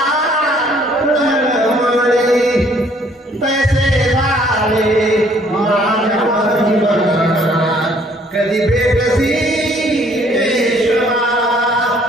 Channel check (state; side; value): normal; both; correlation 0.61